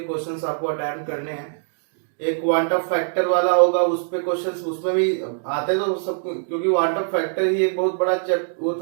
क्वेश्चंस आपको अटेम्प्ट करने हैं। एक क्वांटम फैक्टर वाला होगा, उस पे क्वेश्चंस उसमें भी आते तो सब, क्योंकि क्वांटम फैक्टर ही एक बहुत बड़ा वो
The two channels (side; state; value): left; silent; digital silence